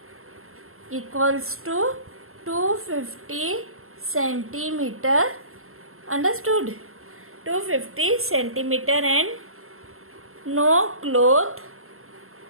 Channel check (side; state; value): left; late; 0.62 ms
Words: equals to 250 centimeter. Understood? 250 centimeter and no cloth